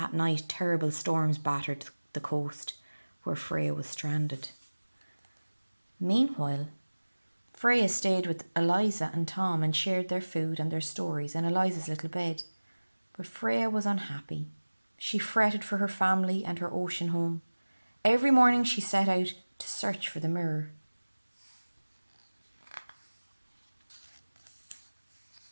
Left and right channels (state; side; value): inverted; both; correlation -1.00